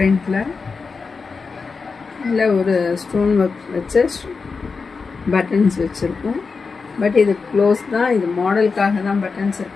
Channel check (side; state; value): right; quieter; 4.7 dB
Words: இல்லை ஒரு ஸ்டோன் ஒர்க் வச்சு பட்டன்ஸ் வச்சுருக்கோம். பட் இது க்ளோஸ் தான், இது மாடலுக்காக தான் பட்டன்ஸ்